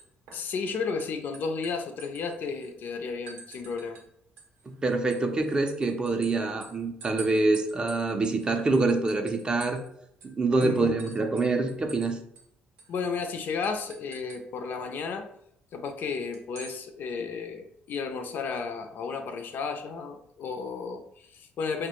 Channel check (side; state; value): both; normal; correlation 0.72